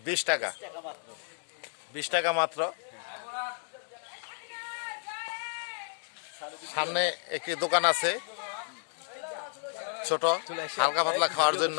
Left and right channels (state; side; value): silent; right; 57 dB below the other